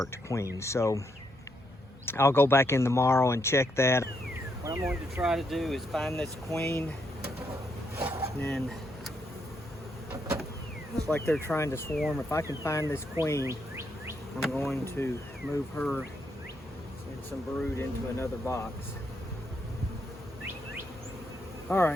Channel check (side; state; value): both; normal; correlation 0.78